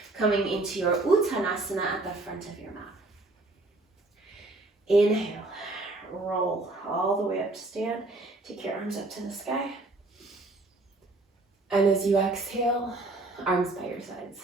coming into your Uttanasana at the front of your mat. Inhale, roll all the way up to stand. Take your arms up to the sky. And as you exhale, arms by your sides.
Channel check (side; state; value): left; quieter; 3.0 dB